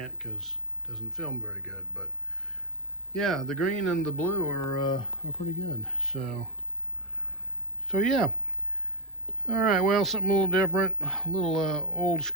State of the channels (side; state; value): both; normal; correlation 0.05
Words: because it doesn't film very good. But yeah, the green and the blue are pretty good. So yeah. All right, well, something a little different, a little old